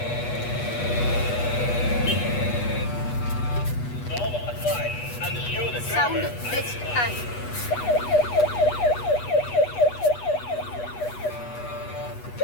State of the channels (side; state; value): right; late; 8.2 ms